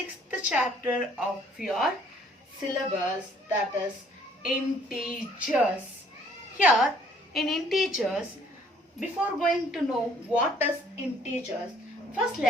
chapter of your syllabus, that is integers. Here in integers, before going to know what is integers, first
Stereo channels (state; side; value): normal; both; correlation 0.61